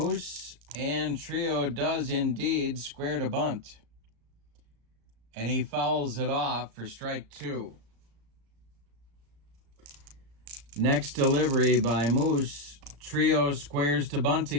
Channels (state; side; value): late; left; 35 ms